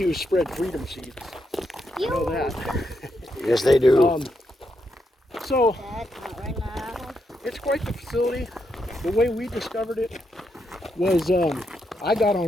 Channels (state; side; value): normal; both; correlation 0.81